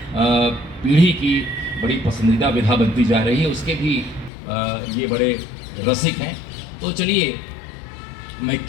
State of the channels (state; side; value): drops out; right; at 4.3 s